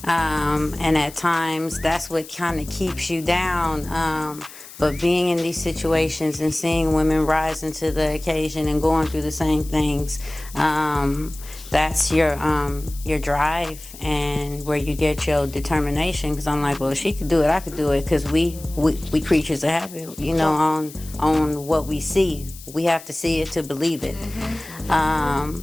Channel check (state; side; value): noise; left; hiss, 17 dB below the sound